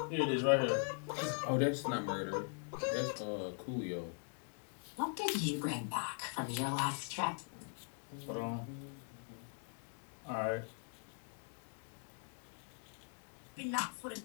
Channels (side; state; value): right; silent; 50 dB below the other